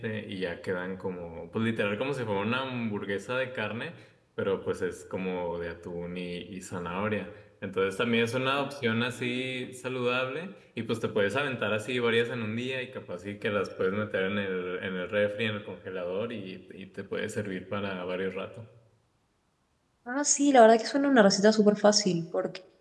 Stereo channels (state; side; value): identical; both; correlation 1.00